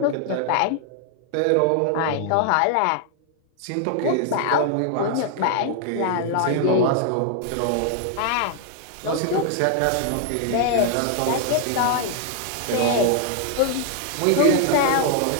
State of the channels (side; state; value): both; different; correlation 0.00